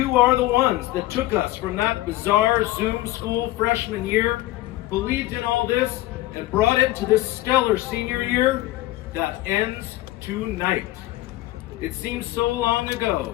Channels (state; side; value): quieter; right; 16.9 dB